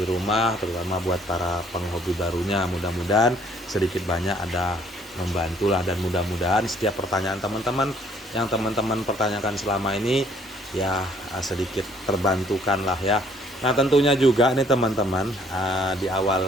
rumah, terutama buat para penghobi barunya. Mudah-mudahan sedikit banyak ada membantulah, dan mudah-mudahan setiap pertanyaan teman-teman yang teman-teman pertanyakan selama ini ya sedikit terbantukan lah ya. Nah tentunya juga nih teman-teman, di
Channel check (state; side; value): normal; both; correlation 0.62